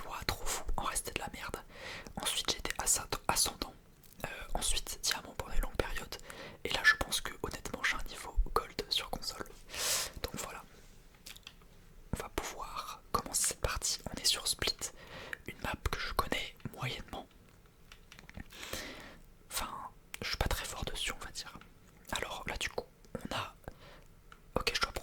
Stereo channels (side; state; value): both; identical; correlation 1.00